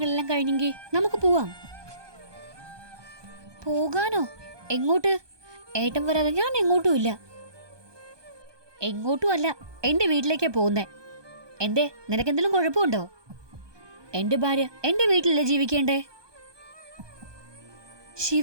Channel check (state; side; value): late; left; 1.2 ms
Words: കഴിഞ്ഞെങ്കിൽ നമുക്ക് പോവാം. പോകാനോ? എങ്ങോട്ട്? ഏട്ടൻ വരാതെ ഞാൻ എങ്ങോട്ടും ഇല്ല. എങ്ങോട്ടും അല്ല, എന്റെ വീട്ടിലേക്കാ പോകുന്നേ. എന്തേ, നിനക്കെന്തെങ്കിലും കുഴപ്പമുണ്ടോ? എന്റെ ഭാര്യ എന്റെ വീട്ടിലല്ലേ ജീവിക്കേണ്ടേ?